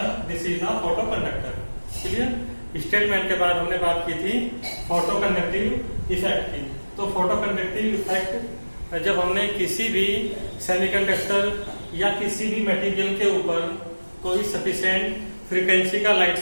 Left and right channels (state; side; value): inverted; both; correlation -1.00